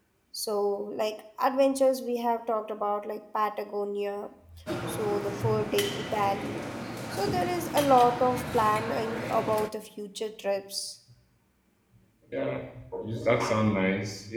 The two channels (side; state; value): both; identical; correlation 1.00